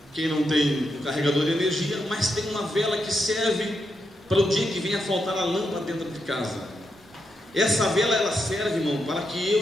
quem não tem um carregador de energia, mas tem uma vela que serve para o dia que venha faltar a lâmpada dentro de casa. Essa vela ela serve, irmão, para que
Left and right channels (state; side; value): normal; both; correlation 0.83